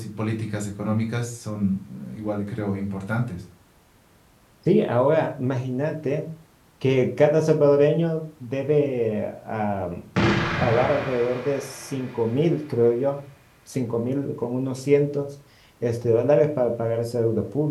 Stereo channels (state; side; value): identical; both; correlation 1.00